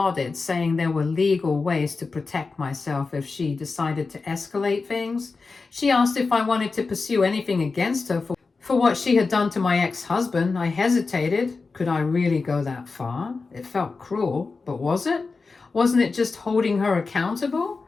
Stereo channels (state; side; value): quieter; right; 4.2 dB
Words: saying there were legal ways to protect myself if she decided to escalate things. She asked if I wanted to pursue anything against her for what she had done to my ex-husband. I hesitated. Could I really go that far? It felt cruel, but was it? Wasn't it just holding her accountable?